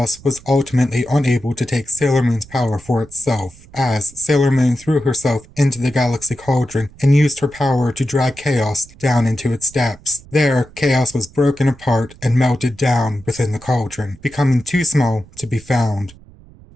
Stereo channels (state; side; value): noise; right; rumble, 23 dB below the sound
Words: was ultimately unable to take Sailor Moon's power for itself, as Sailor Moon threw herself into the Galaxy Cauldron and used her power to drag Chaos down into its depths. There, Chaos was broken apart and melted down within the cauldron, becoming too small to be found.